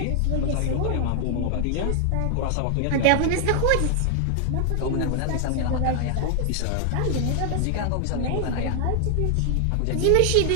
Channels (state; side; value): different; both; correlation 0.00